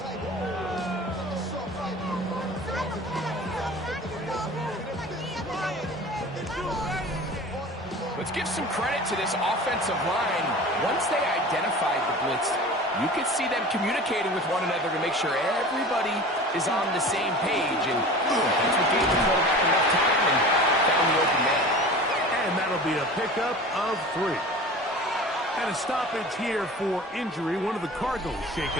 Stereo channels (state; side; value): normal; both; correlation 0.38